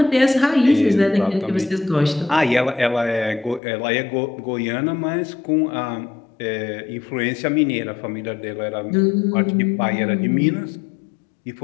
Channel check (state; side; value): drops out; right; at 3.6 s